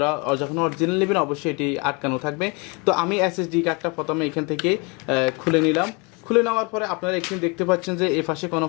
যখন অরিজিনাল নেবেন অবশ্যই এটি আটকানো থাকবে। তো আমি এসএসডি কার্ডটা প্রথমে এখান থেকে খুলে নিলাম। খুলে নেওয়ার পরে আপনারা এখানে দেখতে পাচ্ছেন যে এ পাশে কোনো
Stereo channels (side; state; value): right; quieter; 30.5 dB